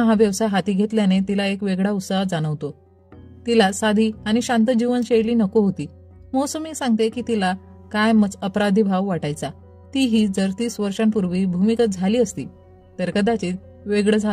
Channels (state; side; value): identical; both; correlation 1.00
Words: हा व्यवसाय हाती घेतल्याने तिला एक वेगळा उत्साह जाणवतो. तिला साधी आणि शांत जीवनशैली नको होती. मौसमी सांगते की तिला कायमच अपराधी भाव वाटायचा. तीही जर 30 वर्षांपूर्वी भूमिगत झाली असती तर कदाचित वेगळं